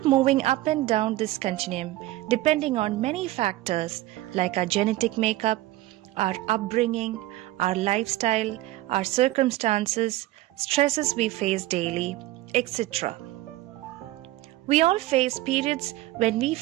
moving up and down this continuum depending on many factors like our genetic makeup, our upbringing, our lifestyle, our circumstances, stresses we face daily, etc. We all face periods when we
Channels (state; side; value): quieter; left; 17.1 dB